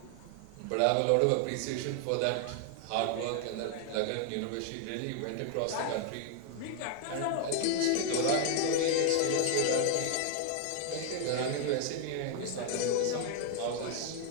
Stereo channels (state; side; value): different; both; correlation 0.00